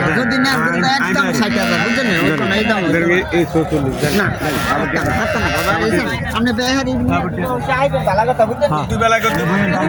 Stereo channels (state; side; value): identical; both; correlation 1.00